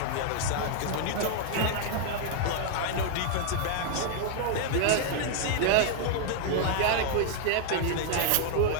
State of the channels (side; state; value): both; different; correlation 0.00